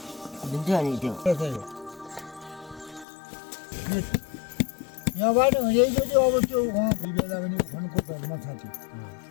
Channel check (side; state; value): right; drops out; at 3.1 s